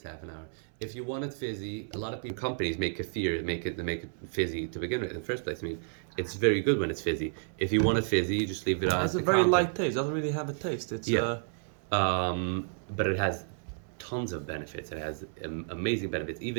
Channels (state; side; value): silent; left; 57 dB below the other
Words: half an hour. If you want it fizzy, a lot of companies make kefir, make it fizzy to begin with in the first place. I mean, it's very good when it's fizzy. If you want it fizzy, you just leave it on. It has a the very counter. light taste. Doesn't really have a taste. It's Yeah. But it has tons of benefits. It has amazing benefits.